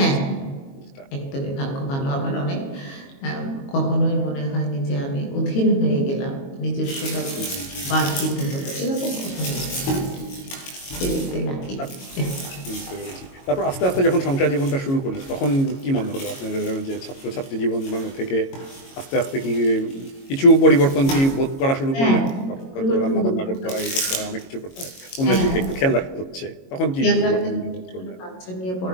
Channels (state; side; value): late; right; 22 ms